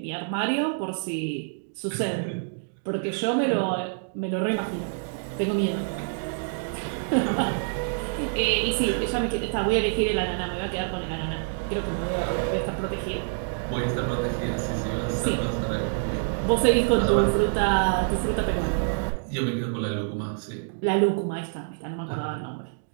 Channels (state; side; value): silent; left; digital silence